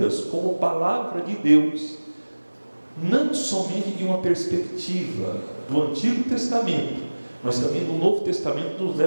como palavra de Deus, não somente de uma perspectiva do Antigo Testamento, mas também do Novo Testamento, nos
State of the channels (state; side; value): inverted; both; correlation -1.00